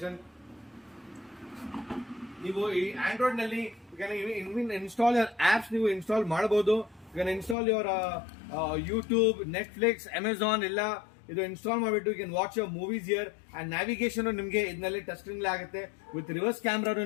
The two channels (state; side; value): drops out; right; at 7.6 s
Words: ನೀವು ಈ ಆಂಡ್ರಾಯ್ಡ್ ನಲ್ಲಿ ಇನ್ಸ್ಟಾಲ್ ಆಪ್ಸ್ ನೀವು ಇನ್ಸ್ಟಾಲ್ ಮಾಡಬಹುದು. You can install your YouTube, Netflix, Amazon ಎಲ್ಲ ಇದು ಇನ್ಸ್ಟಾಲ್ ಮಾಡಿಬಿಟ್ಟು you can watch your movies here. And navigation ನಿಮಗೆ ಇದರಲ್ಲಿ ಟಚ್ ಸ್ಕ್ರೀನ್ ಆಗುತ್ತೆ. ವಿತ್ ರಿವರ್ಸ್ ಕ್ಯಾಮ್ರಾ